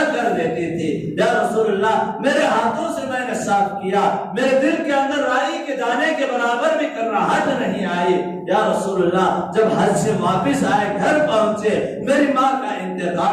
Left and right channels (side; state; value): both; identical; correlation 1.00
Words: کر دیتی تھی۔ یا رسول اللہ، میرے ہاتھوں سے میں نے صاف کیا، میرے دل کے اندر رائی کے دانے کے برابر بھی کرراہٹ نہیں آئی۔ یا رسول اللہ، جب حج سے واپس آئے، گھر پہنچے، میری ماں کا